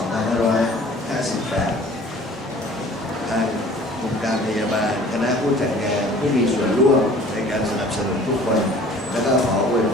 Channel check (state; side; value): normal; both; correlation 0.49